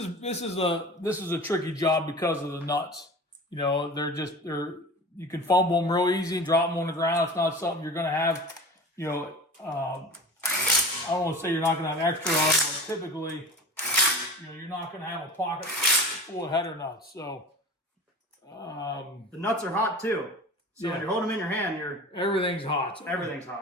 a tricky job because of the nuts. You know, you can fumble them real easy and drop them on the ground. It's not something you're going to have. You know, I don't want to say you're not going to have extra of, but typically, you know, you're not going to have a pocket full of header nuts. So the nuts are hot too. So yeah. when you're holding them in your hand, everything's hot. So everything's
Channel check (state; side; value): normal; both; correlation 0.36